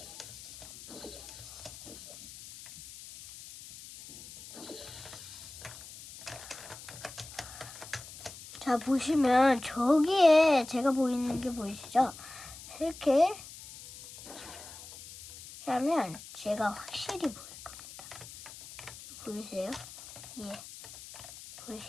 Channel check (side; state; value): left; noise; hiss, 15 dB below the sound